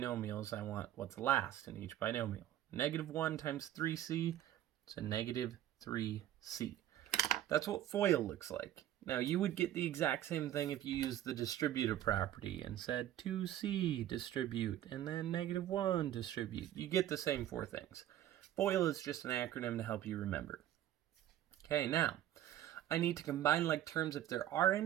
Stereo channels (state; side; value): quieter; left; 12.4 dB